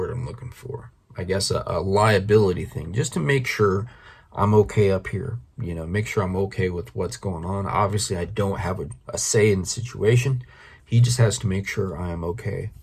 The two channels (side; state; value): both; identical; correlation 1.00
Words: I'm looking for? I guess a liability thing, just to make sure I'm okay up here, make sure I'm okay with what's going on. Obviously, I don't have a say in the situation. He just has to make sure I am okay.